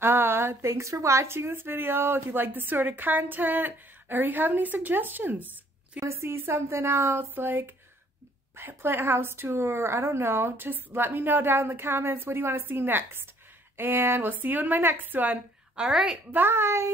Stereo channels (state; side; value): normal; both; correlation 0.62